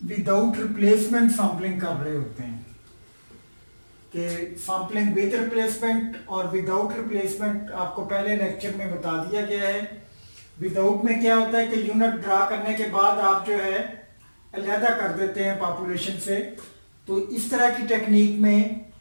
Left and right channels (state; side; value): inverted; both; correlation -1.00